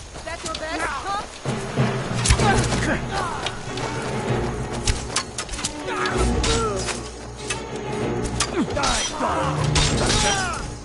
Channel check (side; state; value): both; identical; correlation 1.00